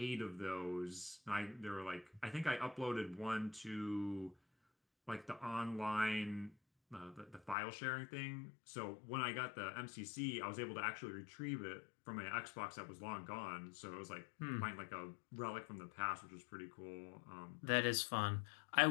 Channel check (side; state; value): right; drops out; at 7.6 s